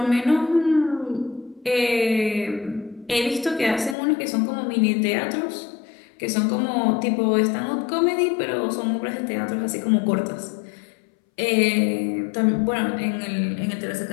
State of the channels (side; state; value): right; drops out; at 4.0 s